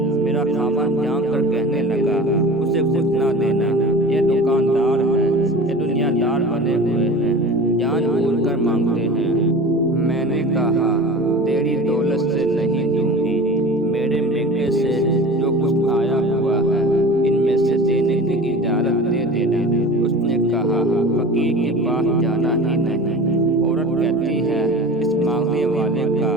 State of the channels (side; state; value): both; normal; correlation 0.36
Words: मेरा खामन जान कर कहने लगा, उसे कुछ ना देना, ये दुकानदार है, ये दुनियादार बने हुए हैं, जान बूझ कर मांगते हैं। मैंने कहा, तेरी दौलत से नहीं दूंगी, मेरे मेके से जो कुछ आया हुआ है इनमें से देने की इजाजत दे देना। उसने कहा, फकीर के पास जाना ही नहीं। औरत कहती है, इस मांगने वाले का